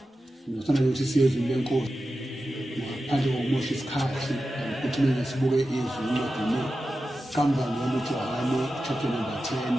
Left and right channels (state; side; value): normal; both; correlation 0.92